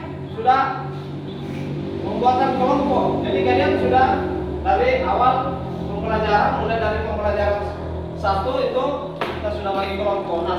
sudah membuatkan kelompok. Jadi kalian sudah dari awal pembelajaran, mulai dari pembelajaran 1 itu kita sudah bagi kelompok. Nah,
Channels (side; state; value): both; identical; correlation 1.00